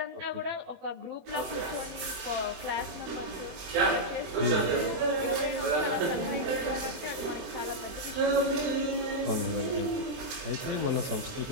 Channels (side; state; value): left; late; 23 ms